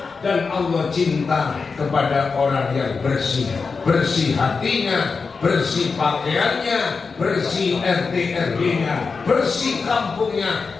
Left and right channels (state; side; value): quieter; right; 4.8 dB